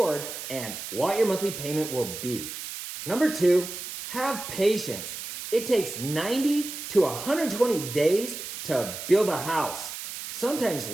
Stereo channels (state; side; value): noise; right; hiss, 8 dB below the sound